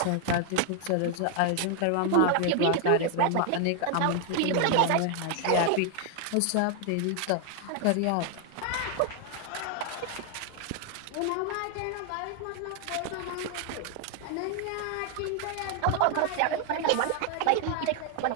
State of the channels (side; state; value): both; different; correlation 0.00